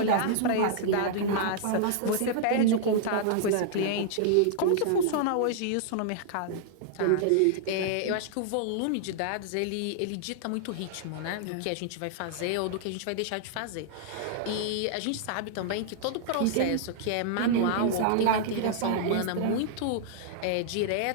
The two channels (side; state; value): both; different; correlation -0.01